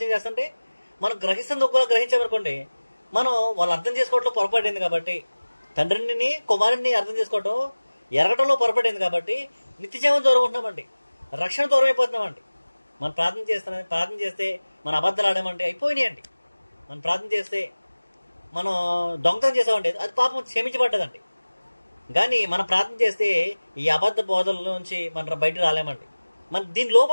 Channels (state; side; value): inverted; both; correlation -1.00